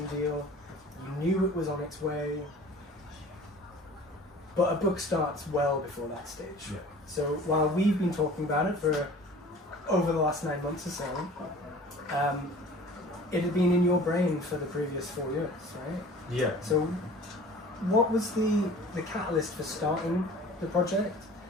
deal. You knew it was on its way. But a book starts well before that stage. Yeah. So while we've been talking about it for over the last 9 months or so, it had been in your brain for the previous 4 years, right? Yeah. So what was the catalyst for starting the project?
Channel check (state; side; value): normal; both; correlation 0.45